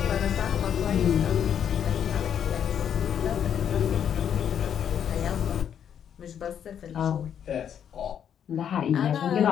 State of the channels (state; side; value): quieter; right; 8.8 dB